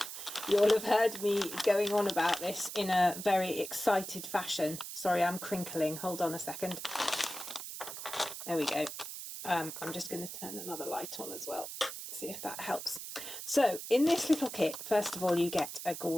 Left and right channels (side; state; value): right; noise; hiss, 9 dB below the sound